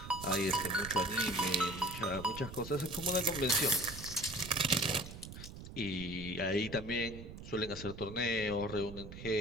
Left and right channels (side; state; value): right; noise; rumble, 12 dB below the sound